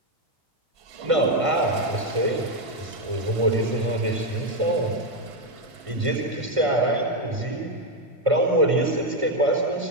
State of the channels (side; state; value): left; late; 1.5 ms